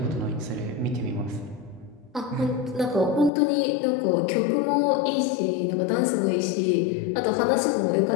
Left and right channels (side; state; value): right; drops out; at 3.3 s